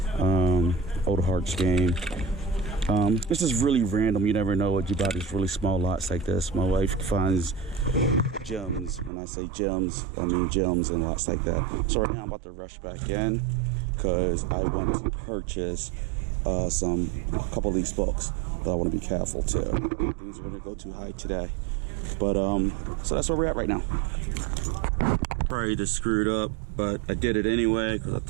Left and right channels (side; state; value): left; drops out; at 9.1 s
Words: Old Hearts game. This is really random. You never know what you buy these really small lots like this. My wife finds gems. When I say gems, I mean gems and lots like that. So right now I'm about to rush back in because I want to purchase a couple of these books, but I want to be careful too. Things are going to go too high today. But so that's where we're at right now. Probably just screwed up, but I did it anyway because I